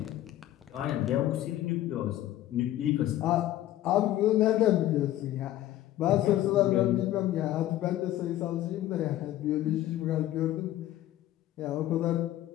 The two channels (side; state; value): right; quieter; 13.8 dB